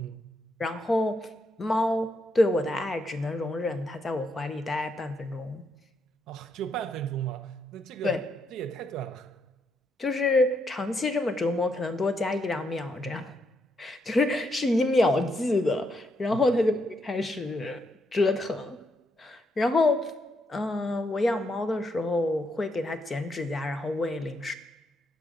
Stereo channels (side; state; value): both; normal; correlation 0.78